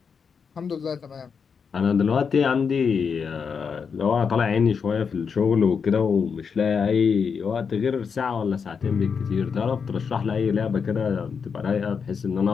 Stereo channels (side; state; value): right; quieter; 6.1 dB